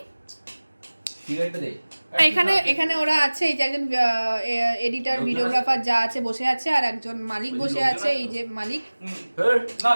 এখানে এখানে ওরা আছে, এই যে একজন এডিটার, ভিডিওগ্রাফার যা আছে বসে আছে, আর একজন মালিক বসে আছে, এই যে মালিক।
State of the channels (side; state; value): both; inverted; correlation -1.00